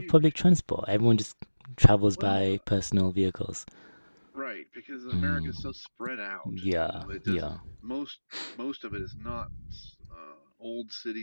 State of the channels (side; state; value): both; inverted; correlation -1.00